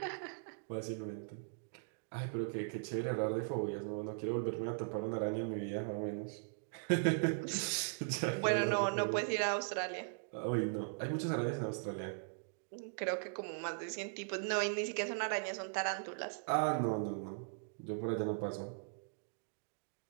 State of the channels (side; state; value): left; silent; digital silence